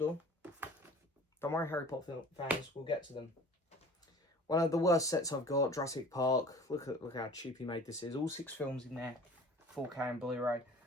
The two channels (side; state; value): both; normal; correlation 0.45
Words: Don't worry, Harry Potter fans, we'll get to them. One of the worst sets I've got, Jurassic Park. Look how cheap he made this is. All 6 films in there, 4K and Blu Ray.